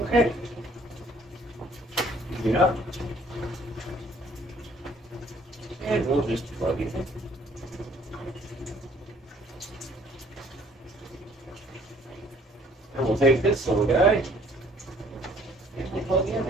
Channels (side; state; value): both; normal; correlation 0.58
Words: Okay. Yeah. And we'll just plug it in. And we'll take this little guy and we'll plug in